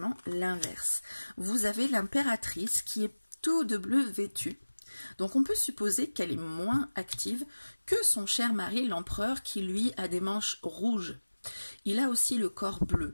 l'inverse. Vous avez l'impératrice qui est tout de bleu vêtue. Donc on peut supposer qu'elle est moins active que son cher mari, l'empereur, qui lui a des manches rouges. Il a aussi le corps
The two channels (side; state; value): both; inverted; correlation -1.00